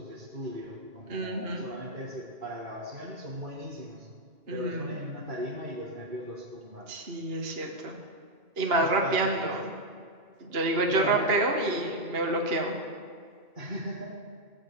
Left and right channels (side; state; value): left; late; 2.8 ms